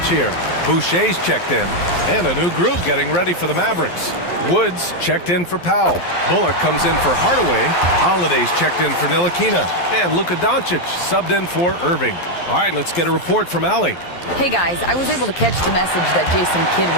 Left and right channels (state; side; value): late; right; 11 ms